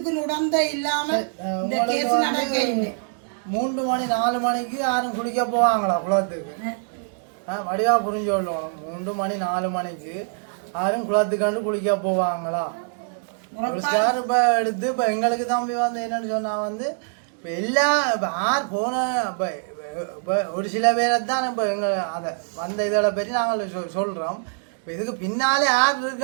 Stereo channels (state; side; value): silent; left; 63 dB below the other